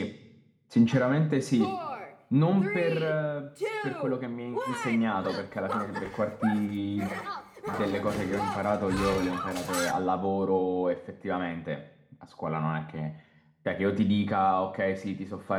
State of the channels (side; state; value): both; identical; correlation 1.00